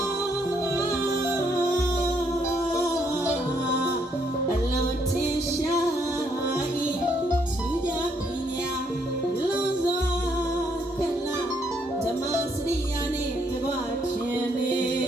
အလုံးထင်ရှားဤသူကြပညာလုံးစွာကလာဓမ္မစရိယာနှင့်တကွခြင်းနေ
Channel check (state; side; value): normal; both; correlation 0.71